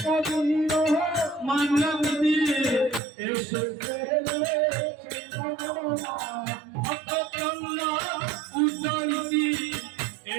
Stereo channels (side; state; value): left; drops out; at 3.0 s